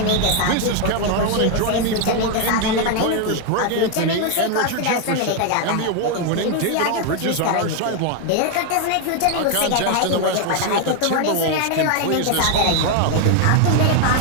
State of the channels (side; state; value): both; different; correlation 0.01